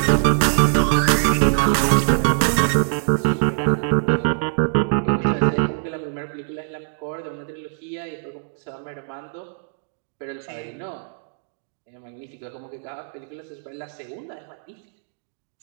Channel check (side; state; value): left; silent; digital silence